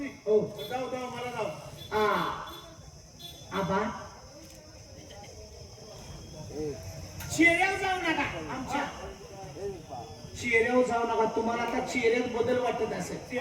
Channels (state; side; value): identical; both; correlation 1.00